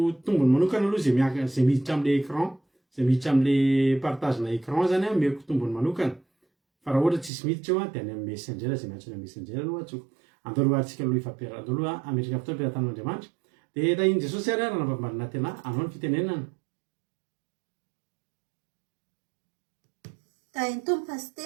tombony manokana aloha zay miditra amin'le écran zay miditra amin'le partage na écran zany meko tombony manokana fa raha ohatra tsisy miditra eo dia any amin'ny messenger zay miantso ny messenger aloha atsoko andao aloha atsika aloha ifampera andao aloha ametraka fotoana ampiaratan'Andriamanitra dia tahiny Jesosy ary raha navamarina tena anao ny fitenenana tahiny tompo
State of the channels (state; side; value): drops out; left; at 7.3 s